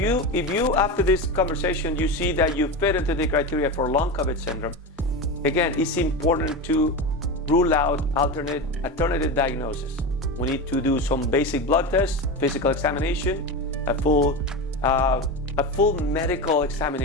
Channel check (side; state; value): both; normal; correlation 0.21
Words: If you after this conversation, you see that you fit into the criteria for long COVID syndrome, again, it's important to rule out alternative diagnosis. We need to do some basic blood tests, physical examination, a full medical